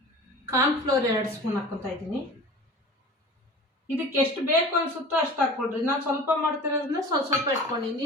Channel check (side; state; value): both; normal; correlation 0.39